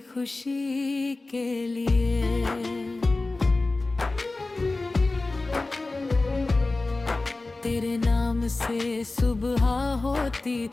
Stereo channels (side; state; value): right; quieter; 3.2 dB